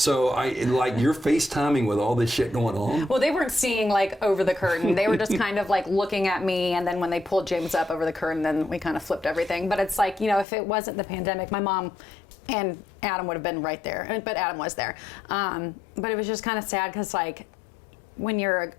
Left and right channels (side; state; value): right; drops out; at 10.5 s